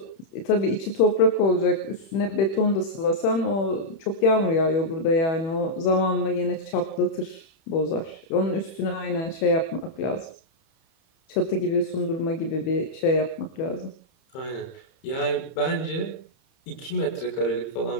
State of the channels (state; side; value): late; right; 31 ms